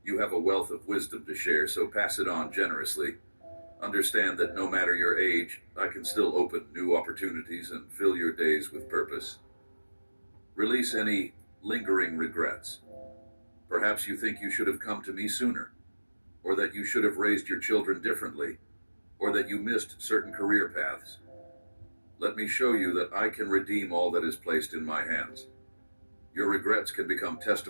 You have a wealth of wisdom to share, so pass it on generously. Understand that no matter your age, I can still open new opportunities and fill your days with purpose. Release any lingering regrets. Perhaps you think you should have come to me sooner, or that you should have raised your children differently, or that you missed certain career paths. Let me show you that I can redeem all that is placed in my hands. Your regrets can become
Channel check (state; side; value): inverted; both; correlation -1.00